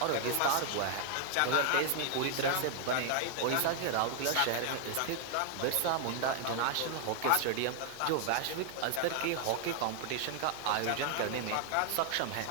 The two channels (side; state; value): both; different; correlation 0.00